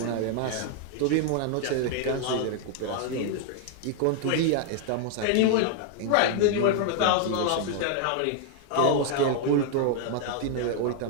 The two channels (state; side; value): different; both; correlation 0.00